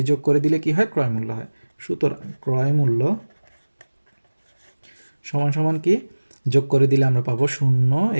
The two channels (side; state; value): both; inverted; correlation -1.00